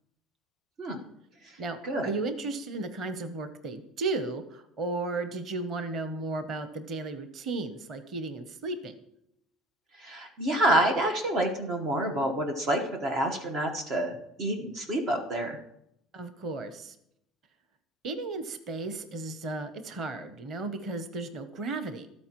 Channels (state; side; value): normal; both; correlation 0.41